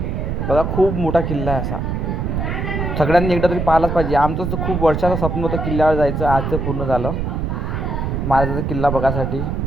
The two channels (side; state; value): right; noise; rumble, 2 dB below the sound